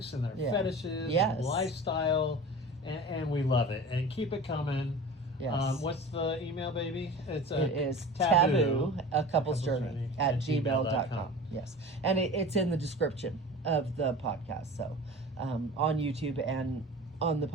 and their fetishes and lifestyle, and we love it. And keep it coming. Yes. What's the email, baby? It is Taboo, a couple's journey at gmail.com. Yes. And it's in the description of the podcast. So on YouTube and on the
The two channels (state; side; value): normal; both; correlation 0.37